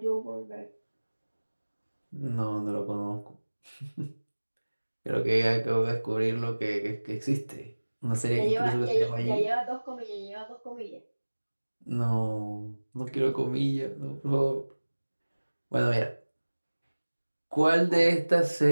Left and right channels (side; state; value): both; inverted; correlation -1.00